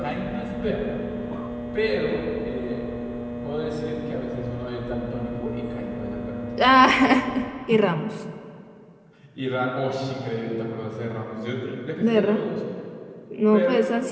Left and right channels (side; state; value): both; identical; correlation 1.00